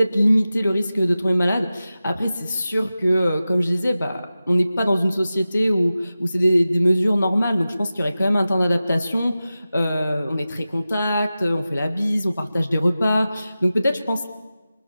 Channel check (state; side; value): inverted; both; correlation -0.95